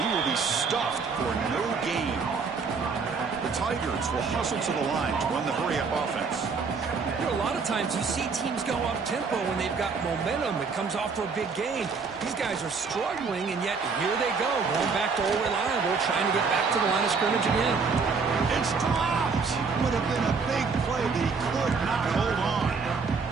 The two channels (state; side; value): quieter; left; 5.0 dB